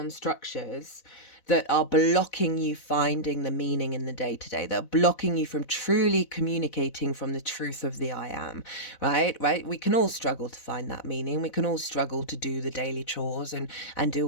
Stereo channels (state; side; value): late; right; 4.0 ms